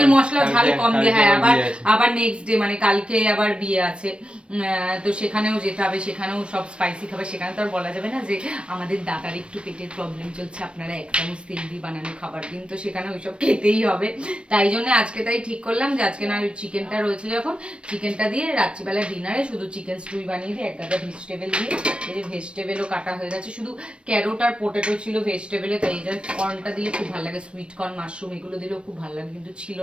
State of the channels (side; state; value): left; late; 0.058 ms